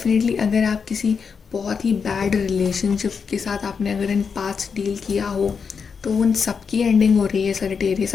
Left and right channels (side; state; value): right; quieter; 5.9 dB